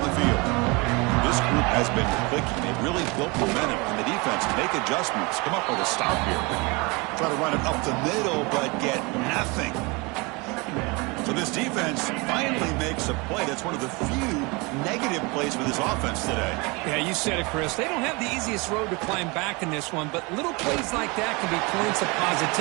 the field. This group has been clicking. They've really built momentum, and the defense make adjustments. Come up with a stop here. Try to run it up the middle, but get nothing. So this defense finally makes a play. That's one of the few negative plays for this offense today. Yeah, you said it, Chris. They don't have the easiest road to climb back in this one, but little plays like that can be points of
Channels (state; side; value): quieter; left; 27.3 dB